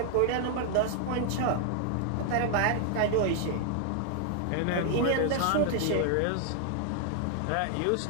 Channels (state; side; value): different; both; correlation 0.00